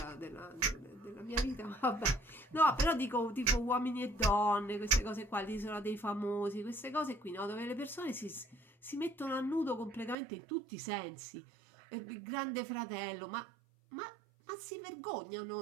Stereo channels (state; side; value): drops out; left; at 10.2 s